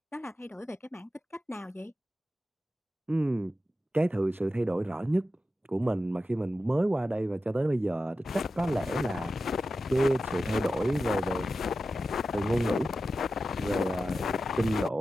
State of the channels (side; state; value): both; normal; correlation 0.92